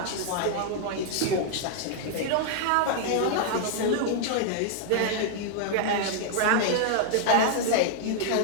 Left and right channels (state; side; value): different; both; correlation 0.00